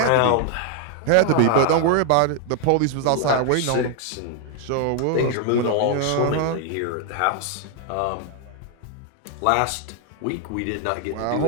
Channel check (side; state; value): both; different; correlation 0.00